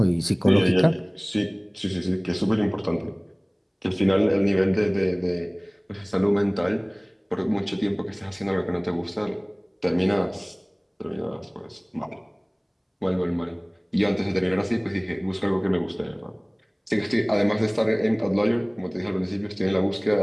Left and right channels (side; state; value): both; identical; correlation 1.00